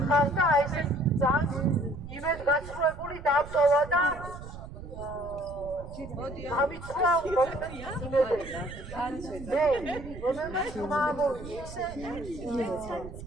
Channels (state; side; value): noise; right; rumble, 12 dB below the sound